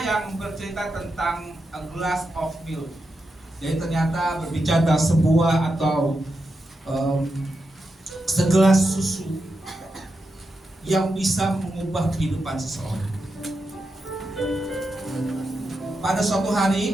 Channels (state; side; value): normal; both; correlation 0.87